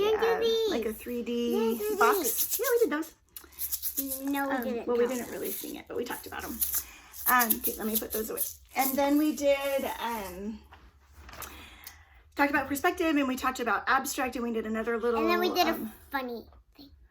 3D box. Yeah, we did those. No, we didn't. Well, we didn't really sing it, but we talked about them. Okay, let me put those away. And then we did talked about perspective, and we talked about abstract, and we did another little. And then we did a funny thing.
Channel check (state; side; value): identical; both; correlation 1.00